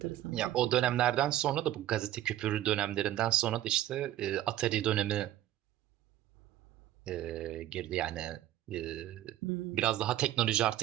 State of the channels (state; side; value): quieter; left; 13.2 dB